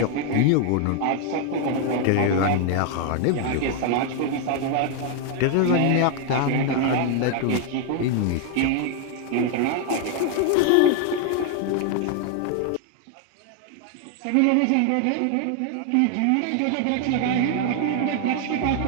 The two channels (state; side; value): different; both; correlation 0.00